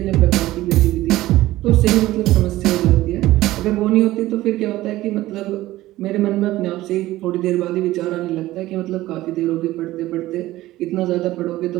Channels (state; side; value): quieter; left; 16.4 dB